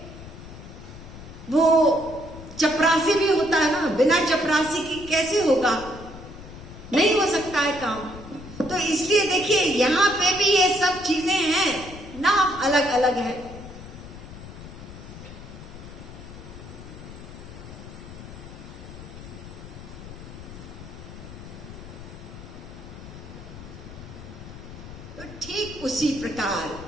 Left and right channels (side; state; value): left; noise; rumble, 14 dB below the sound